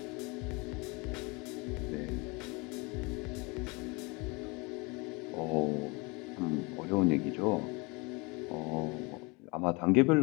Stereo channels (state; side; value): quieter; right; 27.7 dB